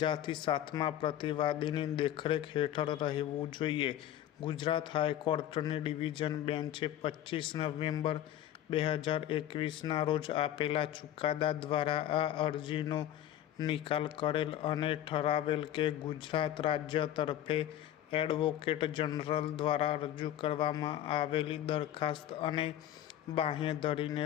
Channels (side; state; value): right; quieter; 12.0 dB